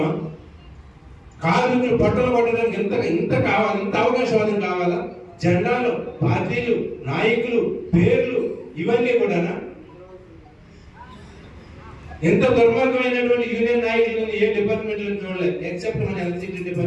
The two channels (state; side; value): identical; both; correlation 1.00